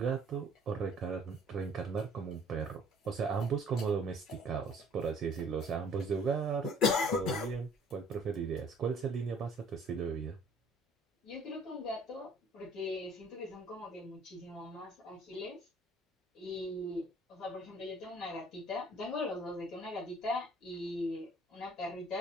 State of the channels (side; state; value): both; normal; correlation 0.55